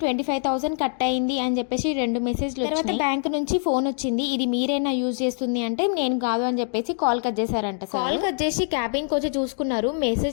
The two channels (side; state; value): right; silent; 62 dB below the other